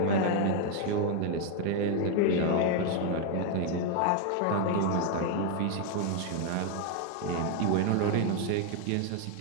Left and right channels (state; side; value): different; both; correlation 0.01